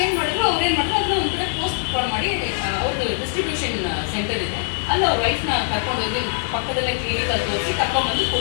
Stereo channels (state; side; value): silent; right; digital silence